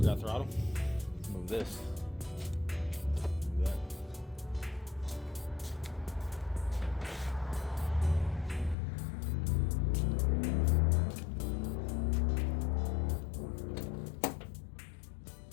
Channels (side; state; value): right; drops out; at 8.8 s